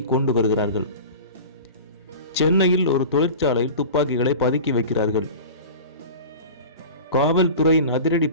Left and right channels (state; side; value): inverted; both; correlation -0.35